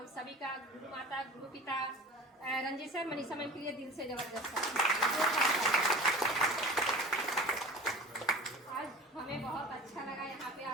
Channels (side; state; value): both; normal; correlation 0.38